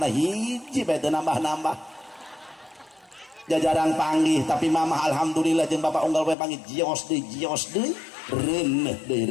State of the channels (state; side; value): drops out; right; at 6.4 s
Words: hiji bae teu nambah-nambah jajarang panggih tapi mama alhamdulillah jeung bapak unggal bae panggih jios deui reuneuh